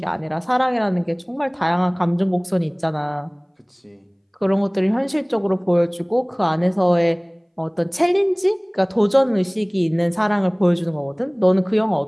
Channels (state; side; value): identical; both; correlation 1.00